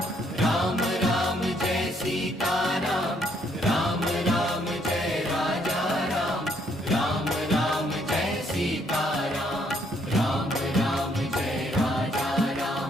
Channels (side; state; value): both; normal; correlation 0.69